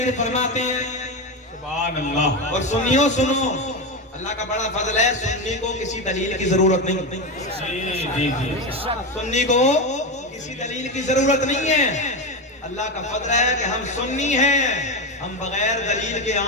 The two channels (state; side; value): normal; both; correlation 0.16